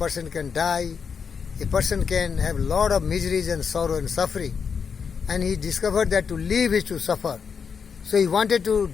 can die, a person can have a lot of miseries and sorrow and suffering. And he discovered that to live is to suffer. So he wanted to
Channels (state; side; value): quieter; right; 6.3 dB